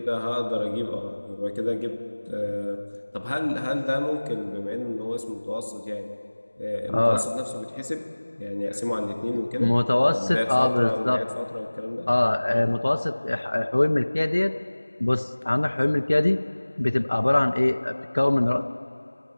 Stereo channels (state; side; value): inverted; both; correlation -1.00